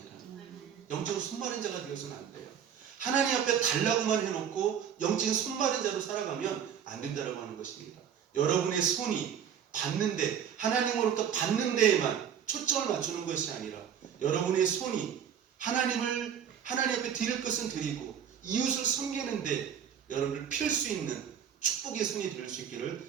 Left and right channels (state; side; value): quieter; left; 8.4 dB